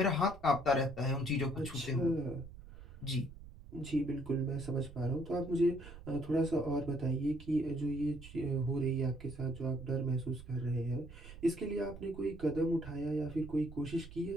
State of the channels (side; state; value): right; noise; rumble, 16 dB below the sound